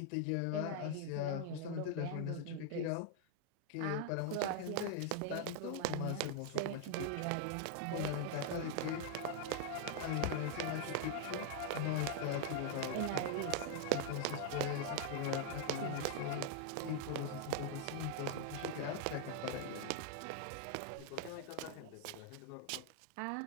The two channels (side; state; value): both; different; correlation 0.00